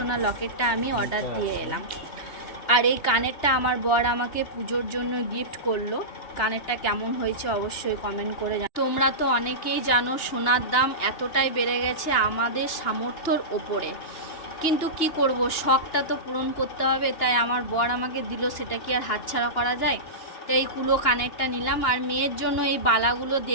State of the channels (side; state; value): right; late; 2.9 ms